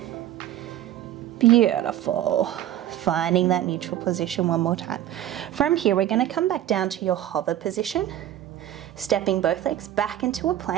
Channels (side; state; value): left; quieter; 12.3 dB